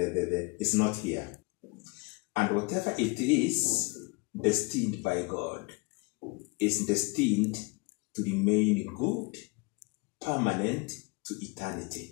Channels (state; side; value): quieter; right; 29.3 dB